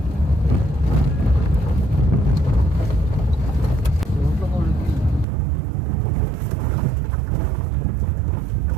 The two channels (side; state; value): left; drops out; at 5.2 s